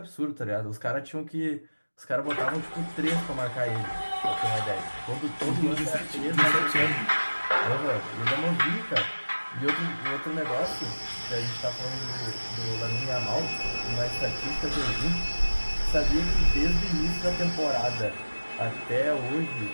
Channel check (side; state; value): both; inverted; correlation -1.00